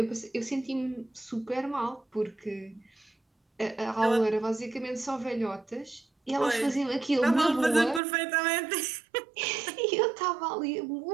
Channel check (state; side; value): drops out; left; at 8.0 s